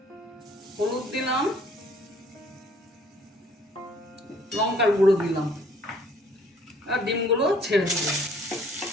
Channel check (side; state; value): both; normal; correlation 0.58